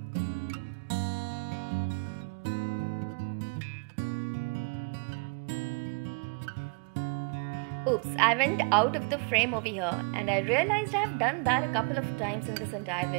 Oops, I went out of the frame over here and I realized I have done that a couple of times in this entire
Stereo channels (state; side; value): quieter; left; 36.2 dB